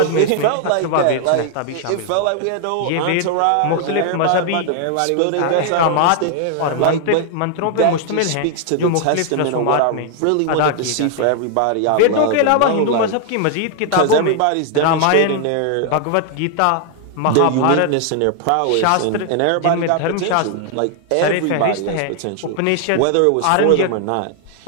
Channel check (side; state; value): both; different; correlation 0.00